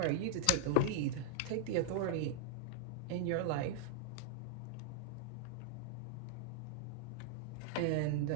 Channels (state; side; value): different; both; correlation -0.01